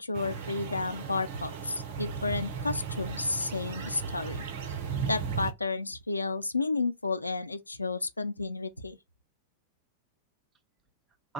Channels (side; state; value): both; inverted; correlation -0.68